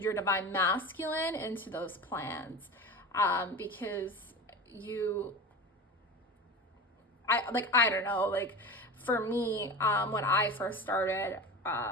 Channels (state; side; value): normal; both; correlation 0.30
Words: divine masculine into those plans, because I don't know, like for me, when I first started,